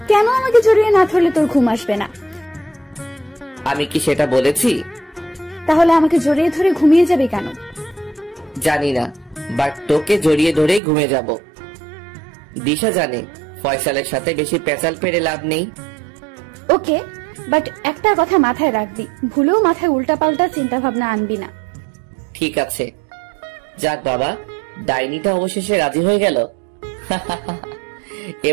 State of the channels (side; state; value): left; drops out; at 10.8 s